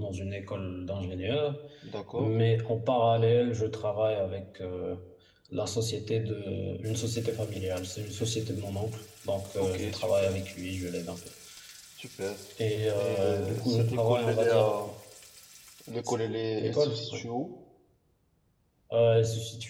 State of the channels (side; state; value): both; identical; correlation 1.00